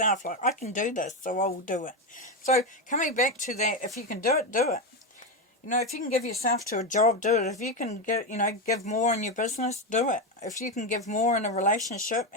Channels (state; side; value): normal; both; correlation 0.11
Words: Like, I can do this, so I will do it. So coming back to that, if you can do it, do it. You know, if you can give yourself to a job, do it. If you can get, you know, give more in your business, do it. If you can give more in a relationship